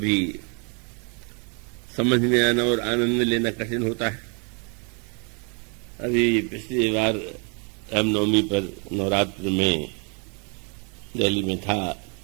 समझ में आना और आनंद लेना कठिन होता है। अभी पिछली बार रामनवमी पर नवरात्र में दिल्ली में था,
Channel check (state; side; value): quieter; left; 36.3 dB